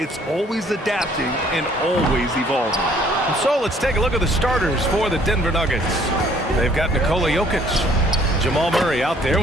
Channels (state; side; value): normal; both; correlation 0.60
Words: always adapting and always evolving. And so let's take a look at the starters for the Denver Nuggets. They've got Nikola Jokic, Jamal Murray out there